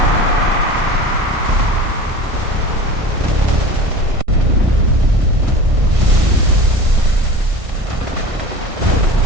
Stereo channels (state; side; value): late; left; 1.6 ms